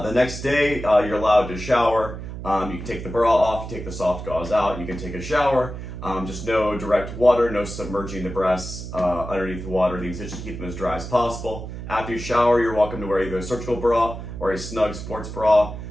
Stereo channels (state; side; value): noise; right; hum, 9 dB below the sound